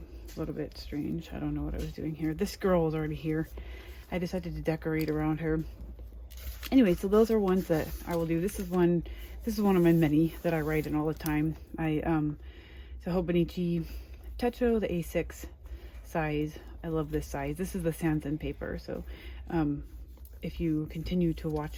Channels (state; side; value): identical; both; correlation 1.00